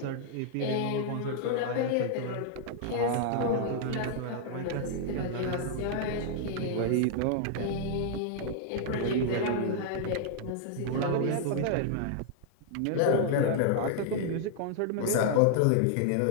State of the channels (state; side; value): different; both; correlation -0.01